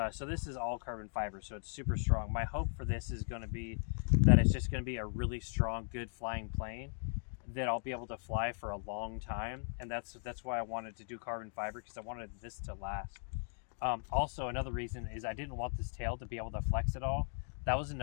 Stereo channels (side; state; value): right; silent; 53 dB below the other